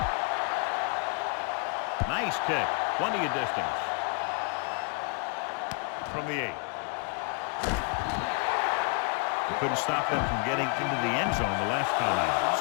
Nice kick. Plenty of distance. From the 8. They couldn't stop them from getting into the end zone the last time out.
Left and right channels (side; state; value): right; quieter; 37.5 dB